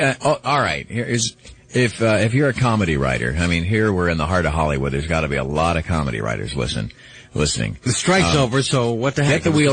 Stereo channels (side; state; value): both; identical; correlation 1.00